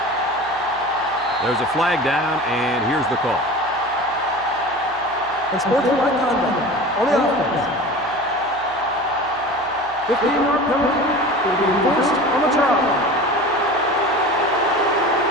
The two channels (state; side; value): noise; right; hum, 23 dB below the sound